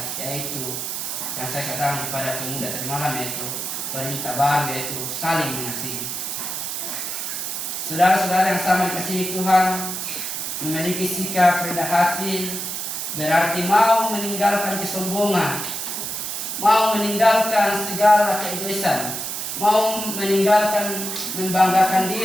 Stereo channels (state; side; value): noise; right; hiss, 4 dB below the sound